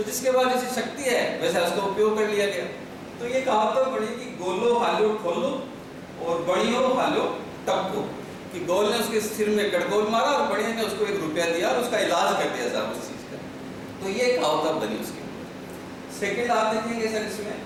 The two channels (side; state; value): both; identical; correlation 1.00